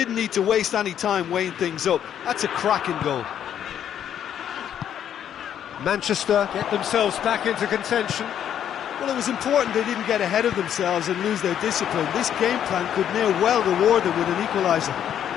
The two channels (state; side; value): quieter; right; 9.7 dB